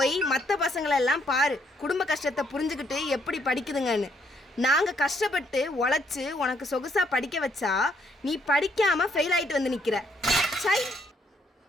மற்ற பசங்களெல்லாம் பாரு, குடும்ப கஷ்டத்தை புரிஞ்சுக்கிட்டு எப்படி படிக்குதுங்கன்னு. நாங்க கஷ்டப்பட்டு உழைச்சு உனக்கு சொகுசா படிக்க வச்சா நீ படிக்காம ஃபெயில் ஆயிட்டு வந்து நிக்கிற. சை,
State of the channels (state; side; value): normal; both; correlation 0.71